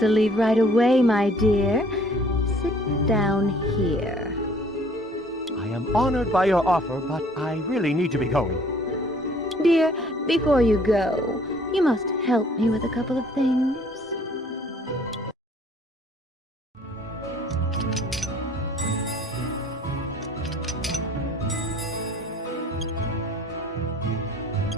leave right away, my dear. Sit down here. I am honored by your offer, but I really need to be going. Dear, before you go, you must help me with a couple of things.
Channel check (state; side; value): normal; both; correlation 0.56